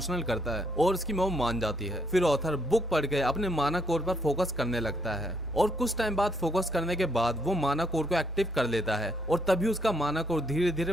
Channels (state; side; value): normal; both; correlation 0.72